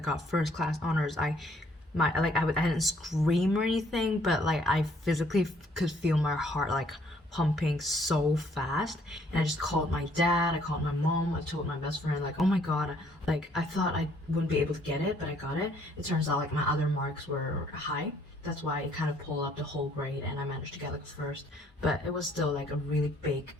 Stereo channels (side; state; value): both; normal; correlation 0.64